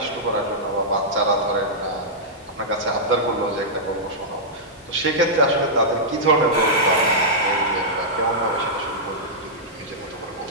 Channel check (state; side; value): normal; both; correlation -0.10